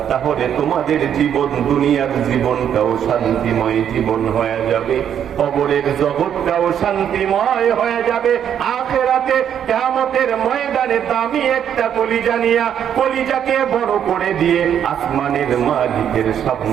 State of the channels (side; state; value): left; quieter; 9.1 dB